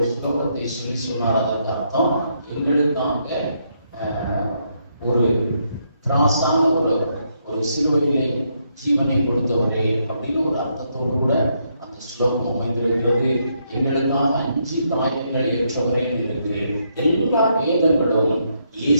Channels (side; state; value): both; inverted; correlation -0.76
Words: ஸ்லோகத்தை சொல்லி சொன்னார். அதற்கு அர்த்தம், எங்களுக்காக ஒரு திராசான ஒரு சிலுவையிலே ஜீவனை கொடுத்தவரே அப்படின்னு ஒரு அர்த்தத்தோடு கூட அந்த ஸ்லோகம் அமைந்திருக்கிறது. எங்களுக்காக 5 காயங்கள் ஏற்றவரே இருக்கிறது. எல்லா வேதங்களும்